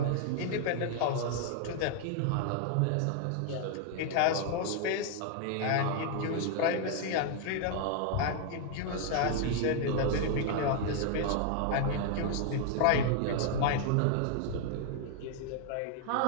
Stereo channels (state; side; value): different; both; correlation 0.00